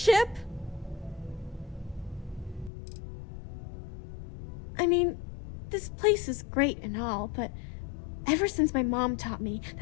I mean, this place is great and all, but ever since my mom taught me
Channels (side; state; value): right; drops out; at 2.7 s